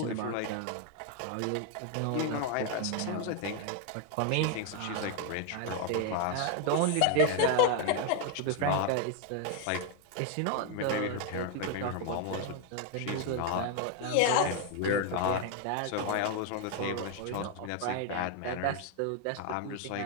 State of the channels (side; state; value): both; different; correlation 0.01